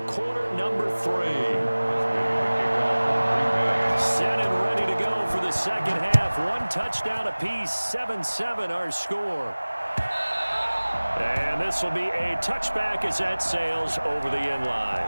quarter number 3. Set and ready to go for the second half. 1 touchdown apiece. 7-7 our score. And this will be a touchback as that sails over the end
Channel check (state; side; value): inverted; both; correlation -1.00